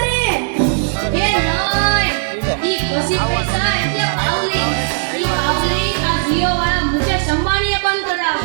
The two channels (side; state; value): left; silent; digital silence